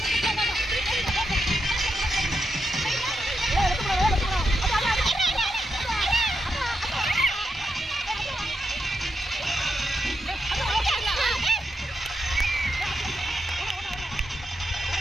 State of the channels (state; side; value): normal; both; correlation 0.85